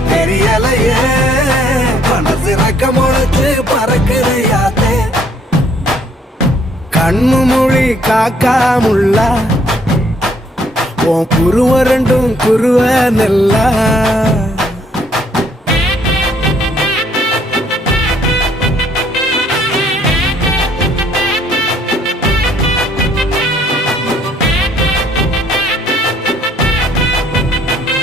தெரியலையே மனசு ரக்க முளைச்சு பறக்குறையாத்தே கண்ணு மொழி காக்காமுள்ள உன் குருவ ரெண்டும் குருவ நெல்லா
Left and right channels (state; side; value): normal; both; correlation 0.65